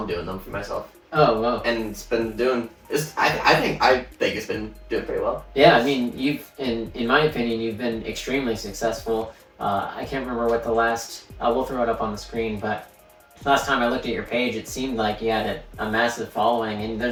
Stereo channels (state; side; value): identical; both; correlation 1.00